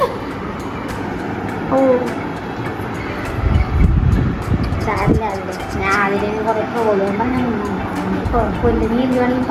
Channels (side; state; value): both; identical; correlation 1.00